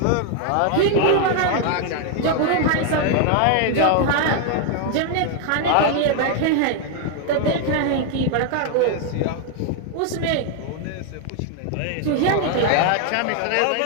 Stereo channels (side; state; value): both; different; correlation 0.00